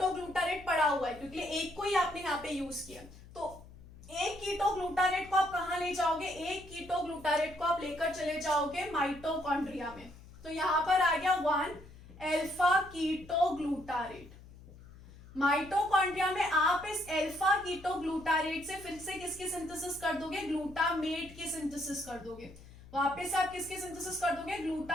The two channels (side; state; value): left; noise; hum, 19 dB below the sound